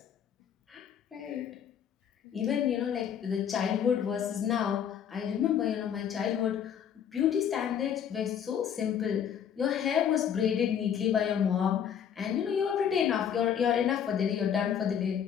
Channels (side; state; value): right; quieter; 8.6 dB